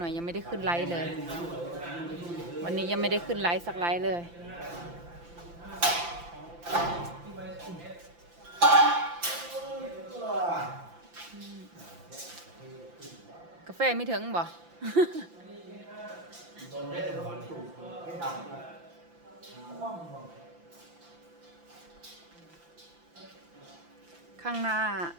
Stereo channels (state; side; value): late; left; 5.9 ms